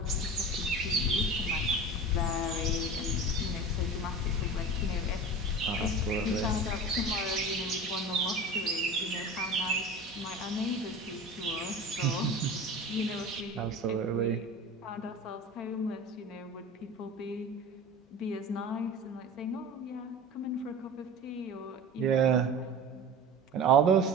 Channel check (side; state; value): both; normal; correlation 0.35